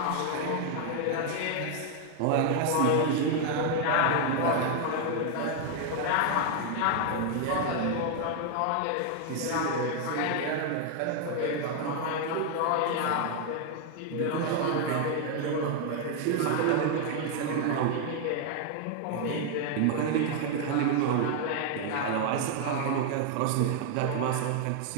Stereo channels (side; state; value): both; different; correlation 0.00